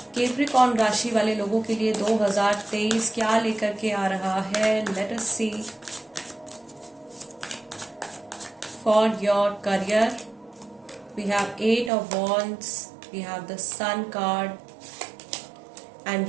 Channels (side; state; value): left; drops out; at 11.9 s